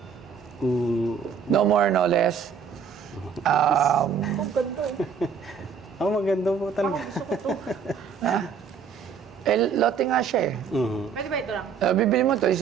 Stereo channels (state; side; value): quieter; left; 6.4 dB